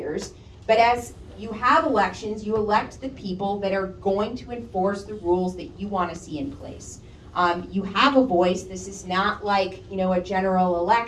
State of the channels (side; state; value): both; identical; correlation 1.00